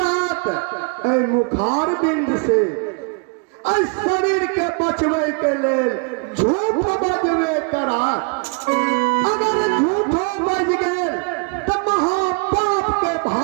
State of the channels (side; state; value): left; quieter; 35.3 dB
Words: मुखार बिंद से शरीर के बचवे के लेल झूठ बजवे करा। अगर झूठो बज गए तो महापाप के